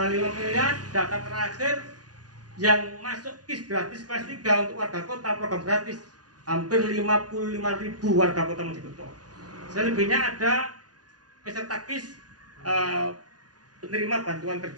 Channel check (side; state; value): left; late; 0.68 ms